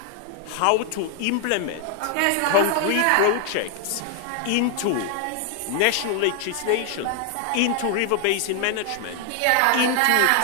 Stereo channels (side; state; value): both; different; correlation 0.00